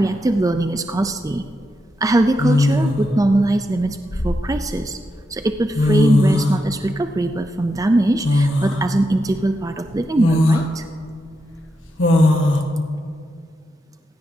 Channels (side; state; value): both; normal; correlation 0.85